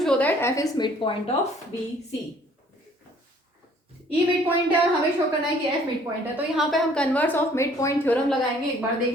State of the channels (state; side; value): normal; both; correlation 0.58